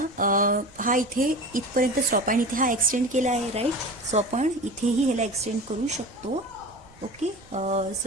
हा इथे इथपर्यंत स्टॉप आहे आणि इथे हा एक्सटेंड केला आहे, राईट? सो आपण इथेही ह्याला एक्सटेंड करू शकतो. ओके.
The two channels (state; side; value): noise; right; rumble, 26 dB below the sound